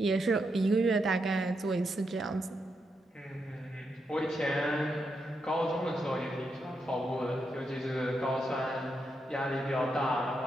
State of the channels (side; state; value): both; normal; correlation 0.83